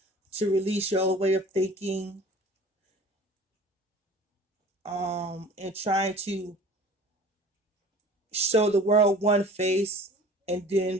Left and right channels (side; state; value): both; normal; correlation 0.45